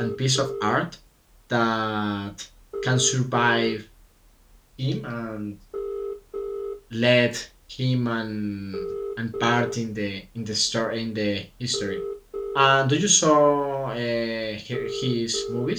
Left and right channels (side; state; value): both; identical; correlation 1.00